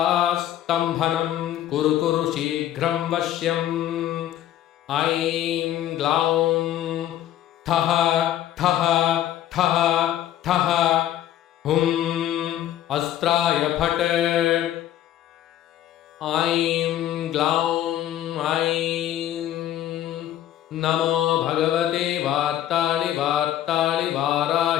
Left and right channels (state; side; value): quieter; right; 12.1 dB